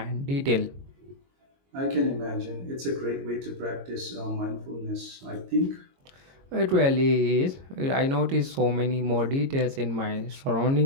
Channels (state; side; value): late; left; 22 ms